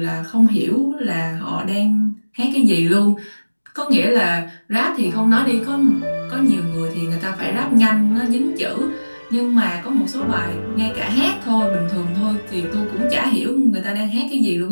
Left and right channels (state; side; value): inverted; both; correlation -1.00